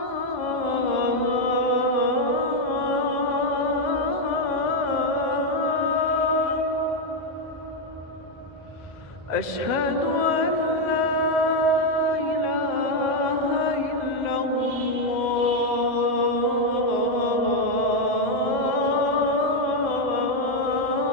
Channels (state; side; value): late; right; 2.0 ms